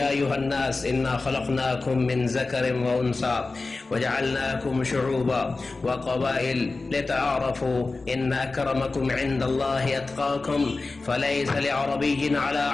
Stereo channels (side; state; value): right; quieter; 3.6 dB